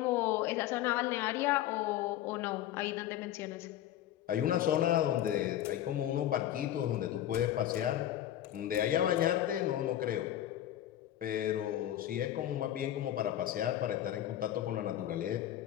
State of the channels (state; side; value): quieter; right; 12.3 dB